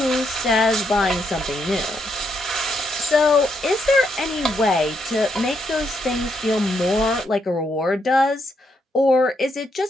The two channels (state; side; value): normal; both; correlation 0.78